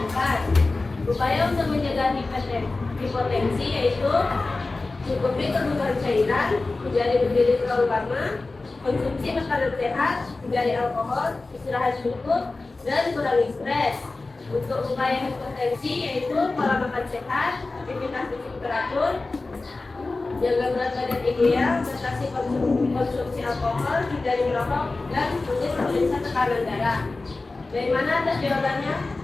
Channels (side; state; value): right; quieter; 3.4 dB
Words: 4. Upaya untuk mencegah hipotensi yaitu cukupi kebutuhan cairan, hindari berdiri terlalu lama, konsumsi makanan sehat, hindari alkohol, istirahat cukup, dan kurangi stres. Untuk upaya hipotensi yaitu pola makan sehat, aktivitas fisik teratur, jaga berat badan ideal, batasi konsumsi alkohol, hindari merokok, dan rutin periksa tekanan darah. Dari mana atas jawabannya?